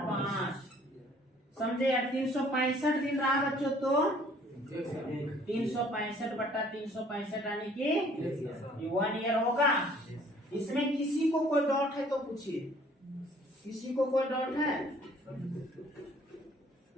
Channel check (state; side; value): normal; both; correlation 0.57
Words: समझे यार। 365 दिन रहा बच्चों तो 365/365, यानी कि 1 ईयर होगा। इसमें किसी को कोई डाउट है तो पूछिए। किसी को कोई डाउट है?